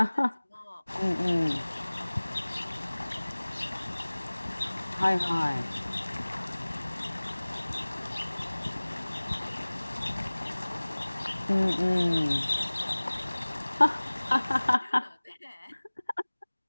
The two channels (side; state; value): both; inverted; correlation -1.00